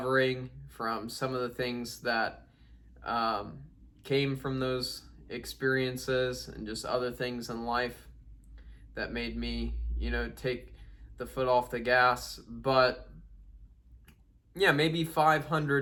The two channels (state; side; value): identical; both; correlation 1.00